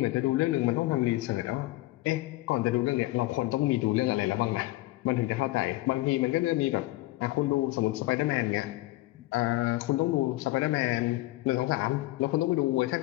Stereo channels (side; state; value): right; quieter; 18.7 dB